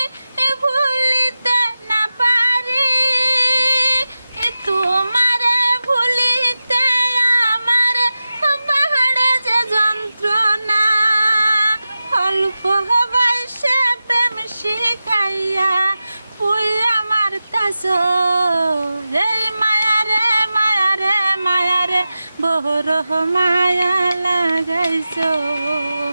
ভুলিতে না পারি, তোমারে ভুলিতে আমার বাহারে যে যন্ত্রণা। অল্প বয়সে প্রেম শিখাইয়া পুই আমার কাছ, এই মায়ারে মায়ারে মায়ারে বড় মায়া লাগাইছো,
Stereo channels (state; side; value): inverted; both; correlation -0.93